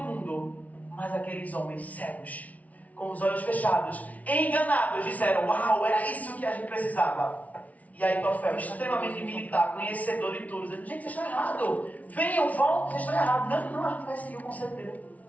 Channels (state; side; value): late; right; 0.070 ms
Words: mas aqueles homens cegos, com os olhos fechados, enganados, disseram, uau, era isso que a gente precisava. E aí Aitofel, extremamente militar, conhecedor de tudo, dizendo, gente, vocês estão errados, venham, voltem, vocês estão errados. Não, a gente vai seguir o conselho dele.